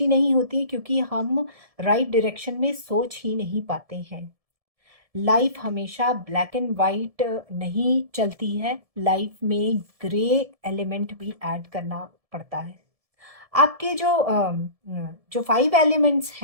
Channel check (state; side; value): late; left; 1.7 ms